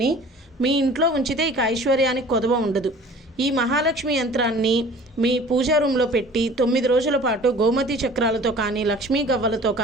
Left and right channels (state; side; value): normal; both; correlation 0.46